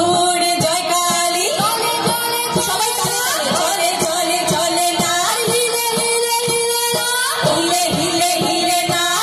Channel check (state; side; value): identical; both; correlation 1.00